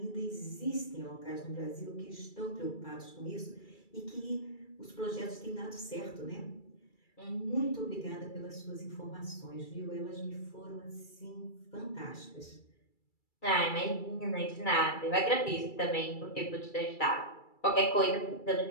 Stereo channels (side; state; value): right; late; 2.3 ms